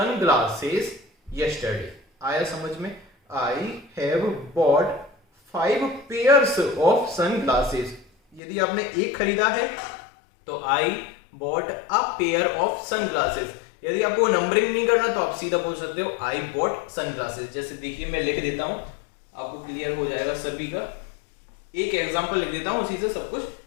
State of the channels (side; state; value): right; drops out; at 8.4 s